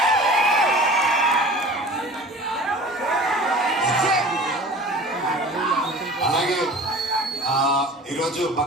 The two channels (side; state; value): both; normal; correlation 0.41